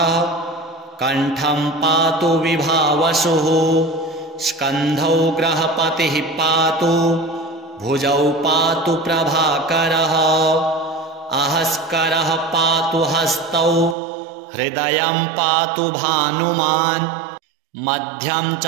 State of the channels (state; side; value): drops out; left; at 14.0 s